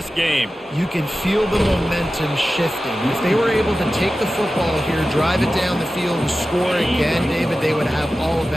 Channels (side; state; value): both; normal; correlation 0.94